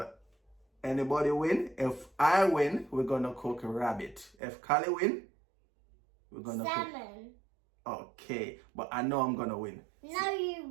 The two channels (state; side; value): drops out; left; at 4.4 s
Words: anybody win? If I win, we're gonna cook a rabbit. If Callie win, we're gonna salmon. Okay, but I know I'm gonna win. No, you